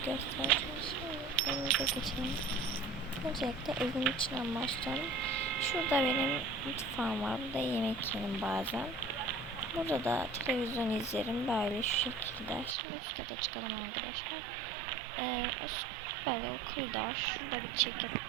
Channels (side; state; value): left; drops out; at 12.8 s